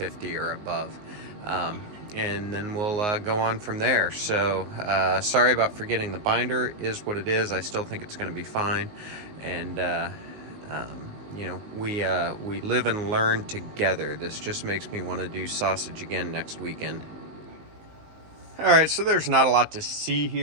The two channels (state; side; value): late; left; 19 ms